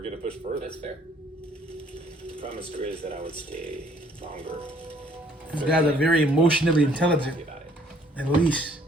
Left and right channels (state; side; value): normal; both; correlation 0.62